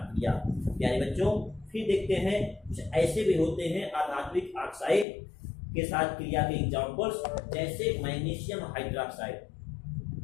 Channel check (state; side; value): drops out; right; at 5.1 s